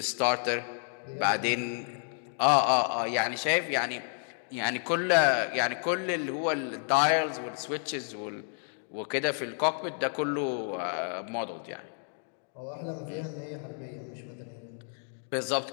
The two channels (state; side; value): silent; right; 58 dB below the other